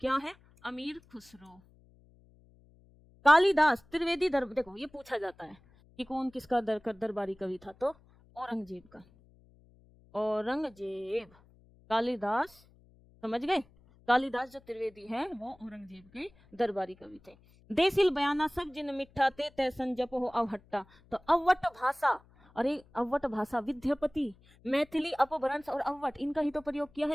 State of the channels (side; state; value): left; noise; hum, 28 dB below the sound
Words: है? अमीर खुसरो। कालिदास त्रिवेदी देखो ये पूछा जाता है कि कौन किसका दरबारी कवि था, तो औरंगजेब का। औरंगजेब, कालिदास, समझ गए? कालिदास जो त्रिवेदी है वो औरंगजेब के दरबारी कवि थे। देसिल बयाना सब जिन मिठा ते तै संजप हो अवहट्टा। तो अवट भाषा, अरे अवट भाषा, विद्यापति, मैथिली, अपभ्रंश और अवट, इनका ही तो प्रयोग किया